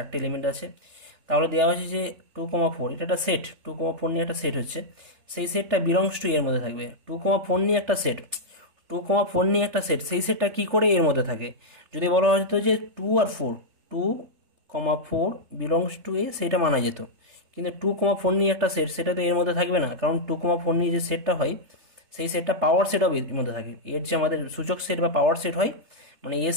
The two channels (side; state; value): left; late; 3.3 ms